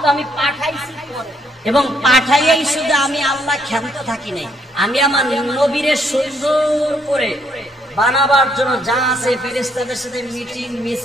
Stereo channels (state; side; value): normal; both; correlation 0.71